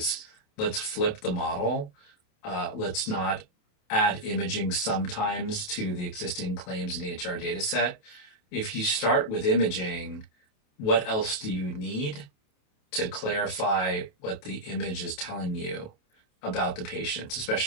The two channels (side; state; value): right; late; 28 ms